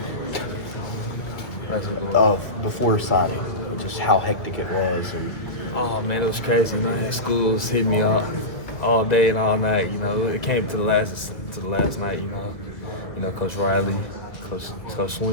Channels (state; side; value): late; right; 1.8 ms